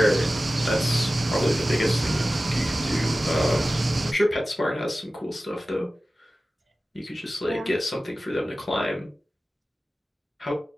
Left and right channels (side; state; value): both; normal; correlation 0.95